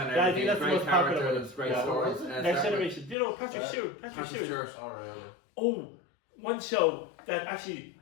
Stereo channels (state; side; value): drops out; right; at 3.2 s